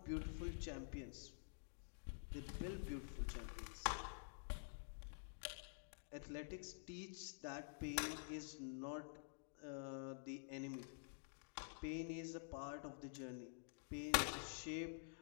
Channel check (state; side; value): silent; right; digital silence